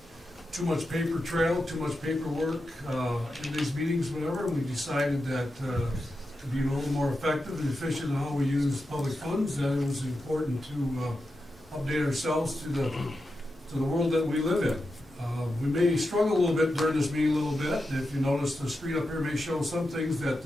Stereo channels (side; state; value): both; normal; correlation 0.89